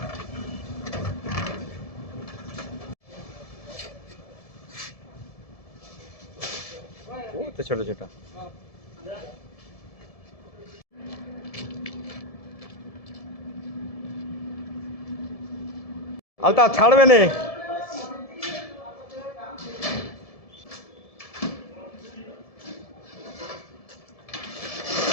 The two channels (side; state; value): right; late; 1.7 ms